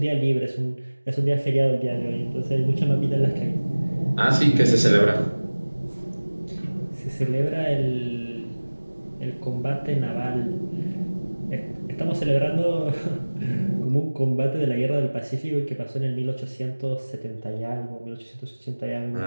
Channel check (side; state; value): both; inverted; correlation -1.00